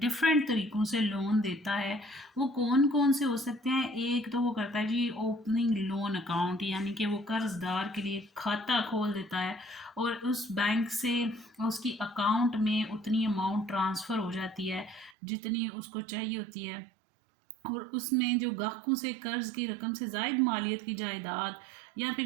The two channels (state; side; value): drops out; left; at 15.2 s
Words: तरीक़ों से लोन देता है। वो कौन कौन से हो सकते हैं? एक तो वो करता है जी ओपनिंग लोन अकाउंट, यानी कि वो कर्ज़दार के लिए खाता खोल देता है, और उस बैंक से उसकी अकाउंट में उतनी अमाउंट ट्रांसफ़र हो जाती है जितनी उसको चाहिए होती है, और उसमें जो गाहकों से कर्ज़ की रकम से ज़ायद मालियत की जायदाद या